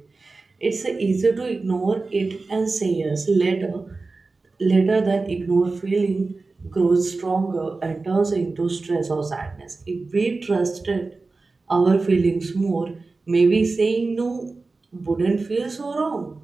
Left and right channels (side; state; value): left; quieter; 3.7 dB